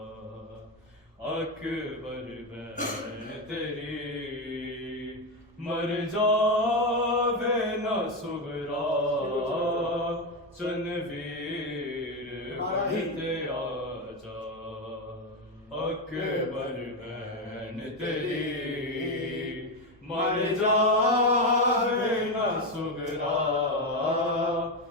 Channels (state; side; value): normal; both; correlation 0.11